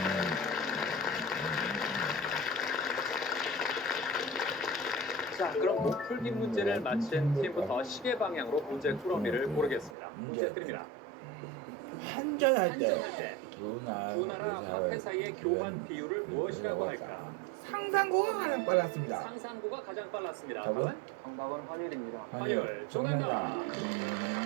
자, 그럼 풀기 문제를 맞힌 팀부터 시계 방향으로 문제 꾸러미를 고르겠습니다. 문제 드립니다. 한전할 한전할 때 때 두 나라 화폐 사이의 교환 비율을 무엇이라고 할까? 상상고가 가장 빨랐습니다. 상산고가 가장 빨랐습니다. 답은 정답은 환율입니다. 환율 정답입니다.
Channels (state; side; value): drops out; left; at 10.0 s